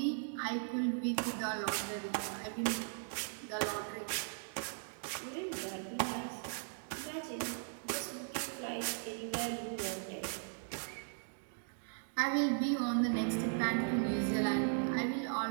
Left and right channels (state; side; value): silent; left; digital silence